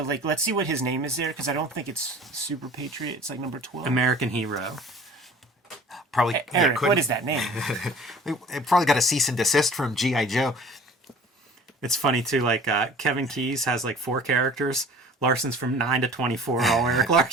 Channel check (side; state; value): both; normal; correlation 0.46